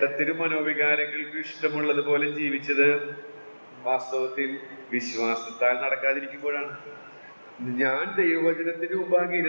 മനോവികാരങ്ങൾക്ക് ഇഷ്ടമുള്ളതുപോലെ ജീവിച്ചത് വാസ്തവത്തിൽ വിശ്വാസത്താൽ നടക്കാതിരിക്കുമ്പോഴാണ്. ഞാൻ ദൈവവചനത്തിന് മുമ്പാകെ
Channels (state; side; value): inverted; both; correlation -1.00